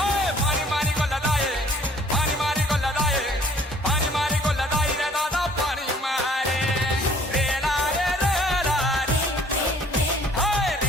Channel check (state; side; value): normal; both; correlation 0.56